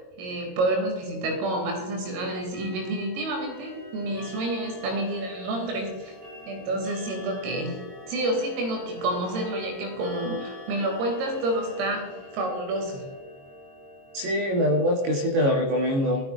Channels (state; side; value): late; left; 22 ms